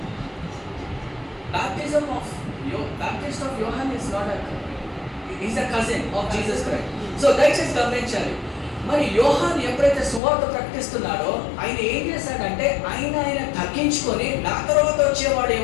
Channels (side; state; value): right; drops out; at 10.2 s